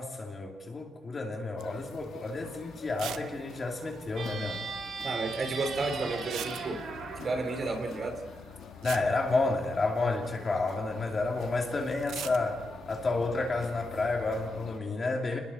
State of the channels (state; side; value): normal; both; correlation 0.84